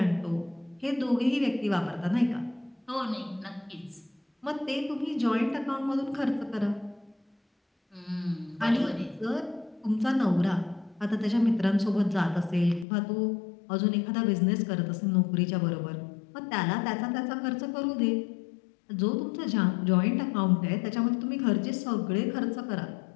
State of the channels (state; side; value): drops out; right; at 12.9 s